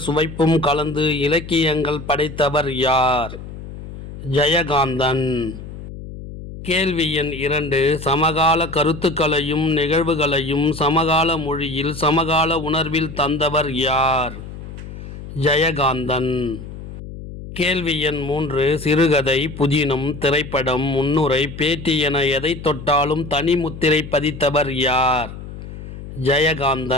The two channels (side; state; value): left; noise; hum, 12 dB below the sound